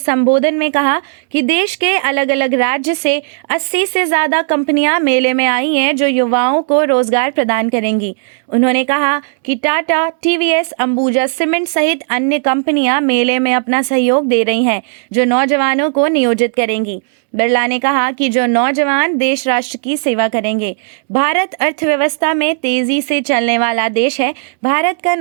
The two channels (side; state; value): left; silent; digital silence